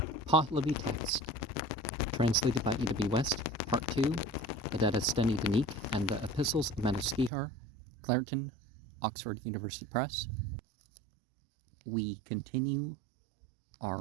Pahlavi text, translated by E.W. West, Part 2, the Dadistani Dinik, and the Epistles of Manuskrihar, Clareton, Oxford University Press. We continue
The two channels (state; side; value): drops out; left; at 7.3 s